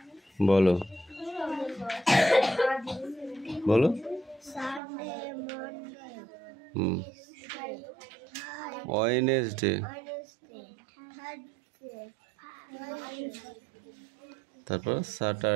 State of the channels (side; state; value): left; drops out; at 4.8 s